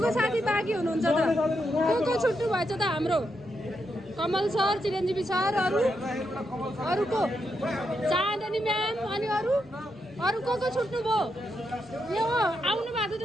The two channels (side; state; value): both; normal; correlation 0.83